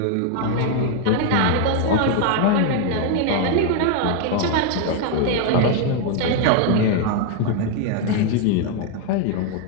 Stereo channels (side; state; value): both; different; correlation 0.01